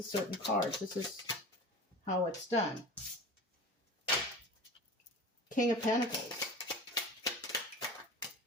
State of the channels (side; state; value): both; normal; correlation 0.36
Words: a certain cards. This is how it's done. King of Pentacles.